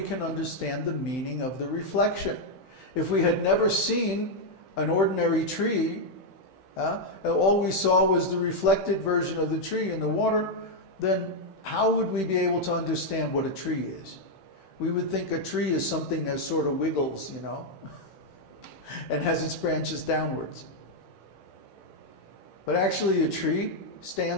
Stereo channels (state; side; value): late; right; 16 ms